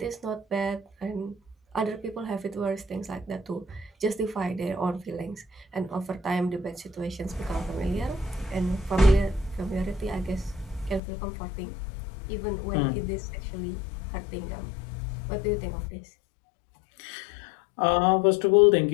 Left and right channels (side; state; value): right; drops out; at 11.0 s